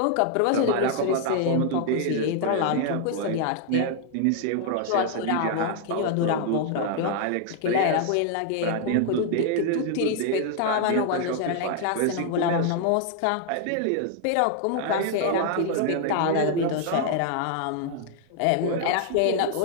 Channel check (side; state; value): both; different; correlation 0.00